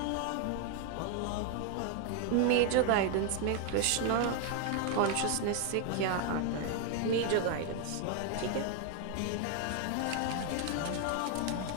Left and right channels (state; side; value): different; both; correlation 0.00